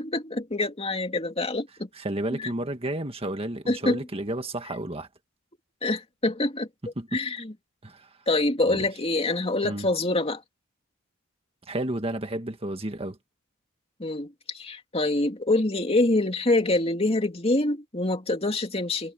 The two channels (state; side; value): normal; both; correlation 0.50